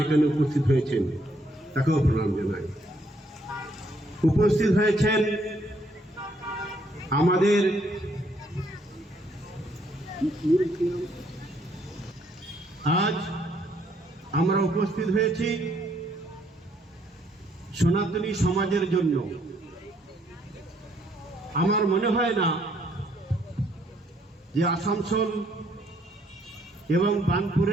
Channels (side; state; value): both; normal; correlation 0.69